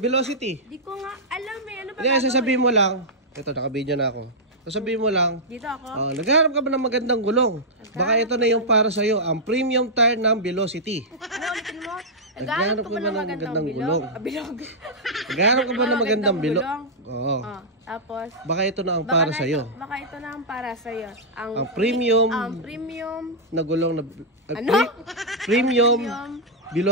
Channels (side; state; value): both; normal; correlation -0.09